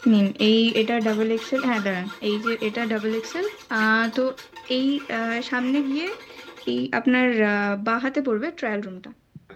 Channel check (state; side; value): identical; both; correlation 1.00